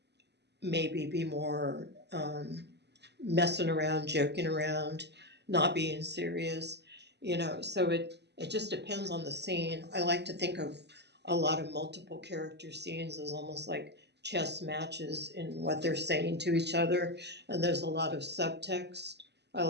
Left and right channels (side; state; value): left; late; 0.50 ms